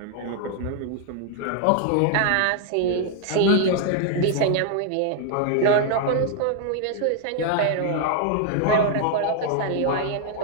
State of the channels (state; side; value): different; both; correlation 0.00